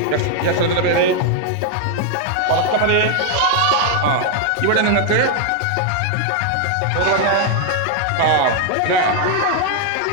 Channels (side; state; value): both; different; correlation 0.00